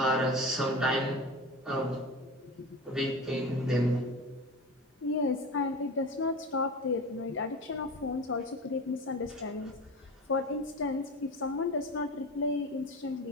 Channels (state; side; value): normal; both; correlation 0.29